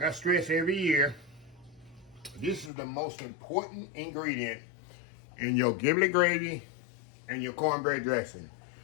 I stress every year, this is the most important ingredient in your giblet gravy and your cornbread dressing.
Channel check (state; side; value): drops out; right; at 2.7 s